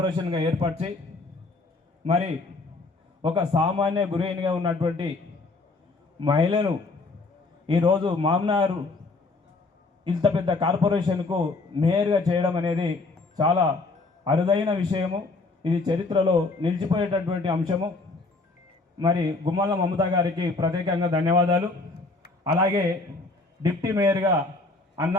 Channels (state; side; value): quieter; right; 3.5 dB